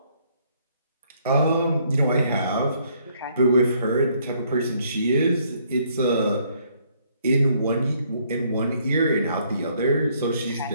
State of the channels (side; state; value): both; inverted; correlation -0.67